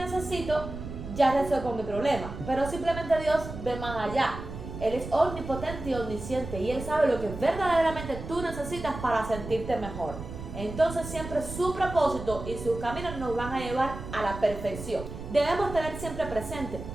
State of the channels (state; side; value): noise; right; rumble, 10 dB below the sound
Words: ya resuelvo mi problema, pero simplemente Dios ve más allá. Él es omnipotente y omnisciente y Él sabe lo que verdaderamente tú necesitas para sentirte mejor. Entonces siempre su propósito y sus caminos nos van a llevar a la perfección. Debemos tener siempre presente